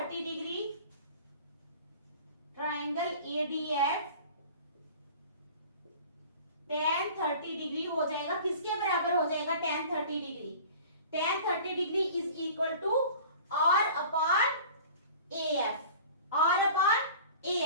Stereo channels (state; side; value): inverted; both; correlation -0.43